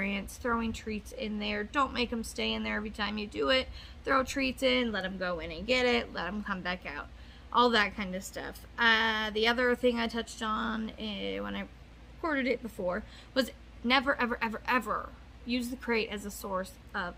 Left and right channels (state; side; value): identical; both; correlation 1.00